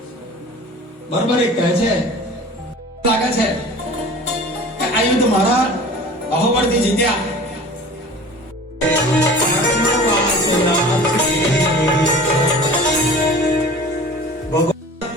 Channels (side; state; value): both; normal; correlation 0.41